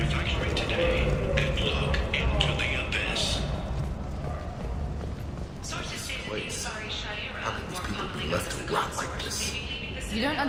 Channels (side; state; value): both; identical; correlation 1.00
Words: today and look into the abyss. Sources say that the Asari Shaira How can these people be left to rot like this? You don't